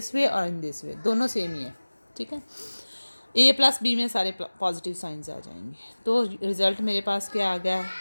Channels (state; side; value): inverted; both; correlation -1.00